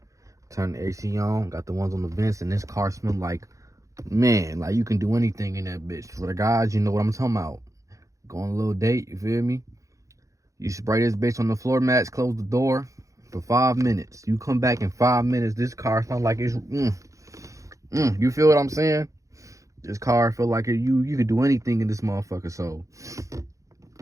turn the AC on, got the ones on the vents, and this car smell like, man, like you can do anything in that bitch. For the guys, you know what I'm talking about. Go on a little date, you feel me? You spray this bitch on the floor mats, close the door for 5 minutes. You come back in 5 minutes, this car smells like it's, you feel what I'm saying? This car feel like you could do anything in this motherfucker. So,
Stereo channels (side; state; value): left; late; 0.15 ms